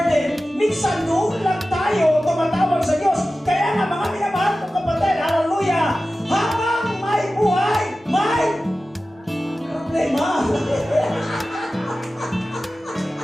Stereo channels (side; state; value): both; normal; correlation 0.95